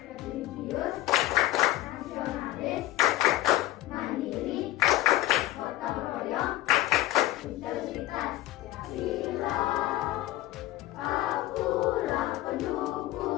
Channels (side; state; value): right; quieter; 16.2 dB